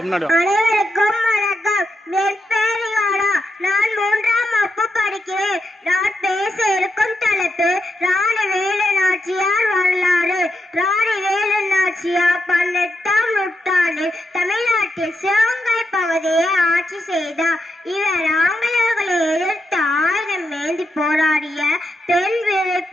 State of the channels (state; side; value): normal; both; correlation 0.84